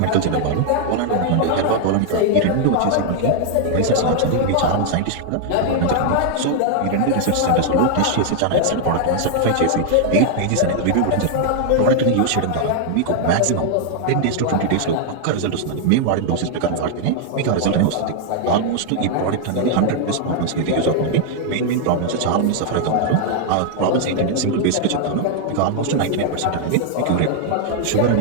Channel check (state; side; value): different; both; correlation 0.00